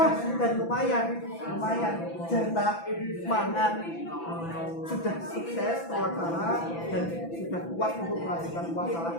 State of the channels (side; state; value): right; late; 6.0 ms